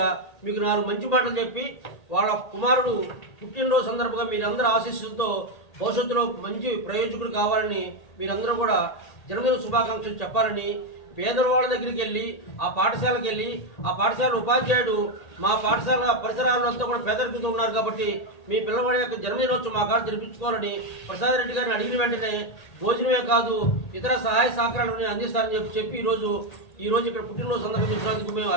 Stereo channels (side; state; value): right; late; 1.8 ms